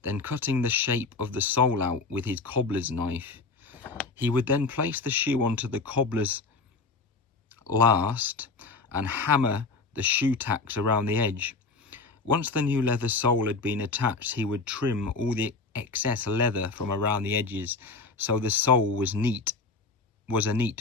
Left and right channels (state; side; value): quieter; right; 4.0 dB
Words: then cutting the shape of the sole out with his cobbler's knife. He would then place the shoe onto the cobbler's last and hammer the shoe tacks around the edge. Once the new leather sole had been attached, he would trim all the excess leather from around the edges so the sole was a